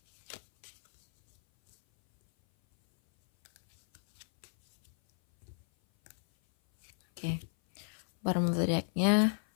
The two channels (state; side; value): silent; right; 56 dB below the other